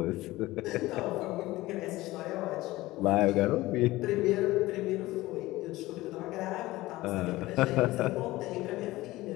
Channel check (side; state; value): right; quieter; 18.3 dB